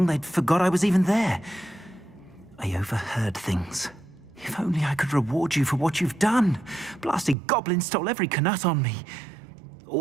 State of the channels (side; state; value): left; drops out; at 7.4 s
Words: they'd forgot I was even there. I overheard things. If only I could reward you for what you've done. Blasted goblins stole every Knut on me.